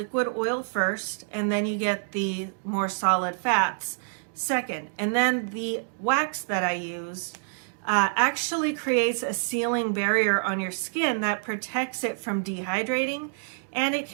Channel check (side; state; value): left; silent; 60 dB below the other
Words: oil first, and then you get the more solid fats second. And then the wax that I use actually creates a sealing barrier on your skin that protects it from dehydrating, and it